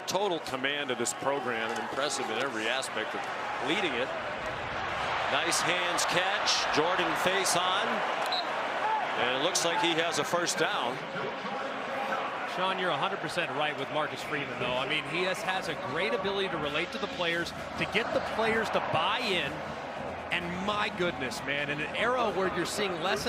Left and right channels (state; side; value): identical; both; correlation 1.00